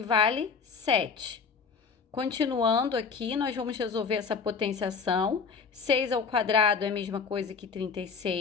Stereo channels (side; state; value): right; quieter; 5.4 dB